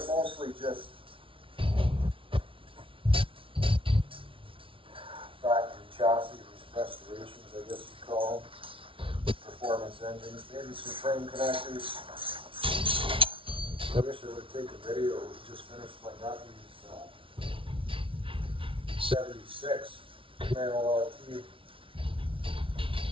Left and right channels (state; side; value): late; left; 0.25 ms